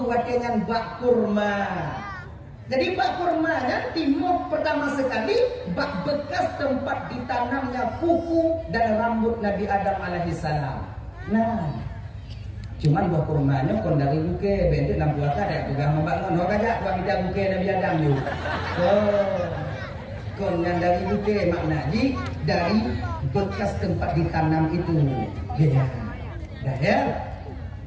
watengan bak kurma. Jadi bak kurma kan timur pertama sekali bak bekas tempat ditanamnya kuku dan rambut Nabi Adam alaihi salam. Nah, cuman buah kurmanya kon dari bukai bentuk dalam puasa ada pegang membangun orang aja buat kita bukai Nabi Adam tu. Oh, kon yang dari bukai maknanya dari bekas tempat ditanam itu. Ya, ya.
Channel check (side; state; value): both; identical; correlation 1.00